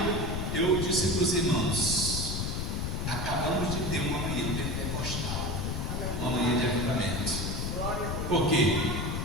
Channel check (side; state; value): left; noise; rumble, 2 dB below the sound